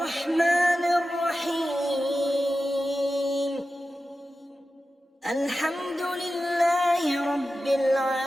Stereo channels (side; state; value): both; normal; correlation 0.93